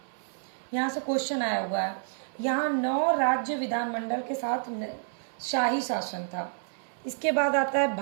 यहाँ से क्वेश्चन आया हुआ है, यहाँ 9 राज्य विधानमंडल के साथ शाही शासन था। इसके बाद आता है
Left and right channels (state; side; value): silent; left; 58 dB below the other